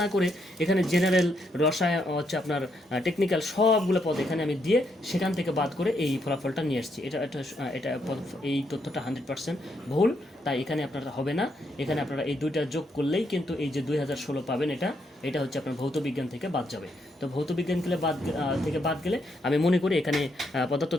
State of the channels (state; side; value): normal; both; correlation 0.77